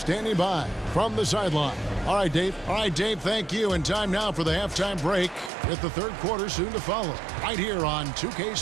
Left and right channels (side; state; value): left; drops out; at 5.5 s